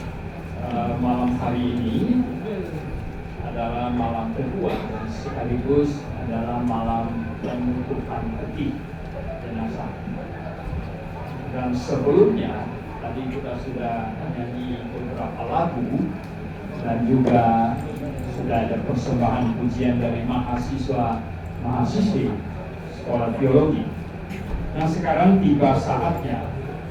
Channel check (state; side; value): identical; both; correlation 1.00